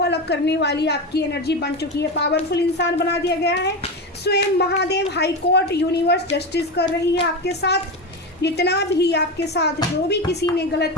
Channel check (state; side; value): normal; both; correlation 0.19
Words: अलग करने वाली आपकी एनर्जी बन चुकी है, पावरफुल इंसान बना दिया गया है। स्वयं Mahadev high court universe justice कर रही है आपके साथ। जितना भी आपके साथ जो भी किसी ने गलत